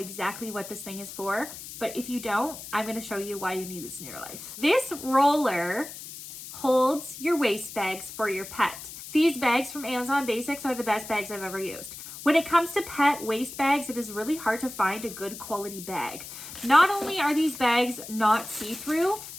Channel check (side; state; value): left; noise; hiss, 12 dB below the sound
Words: what this thing is for. But if you don't, I'm gonna show you why you need this in your life. This roller holds your waste bags for your pet. These bags from Amazon Basics are the best bags I've ever used. When it comes to pet waste bags, it is really hard to find a good quality bag. Not only are these bags not see-through,